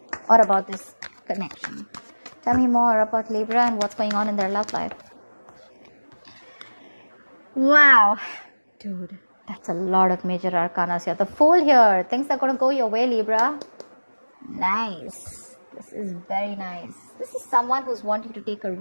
or about this connection. Tell me more about Libra and what's going on in their love life. Wow, dude, that's a lot of major arcanas here. The Fool here. Things are going to go your way, Libra. Nice. This is very nice. This is someone who's wanting to take a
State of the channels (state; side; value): inverted; both; correlation -1.00